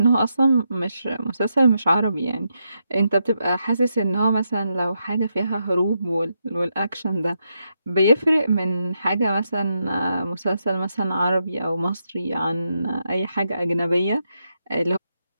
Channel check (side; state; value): both; inverted; correlation -0.83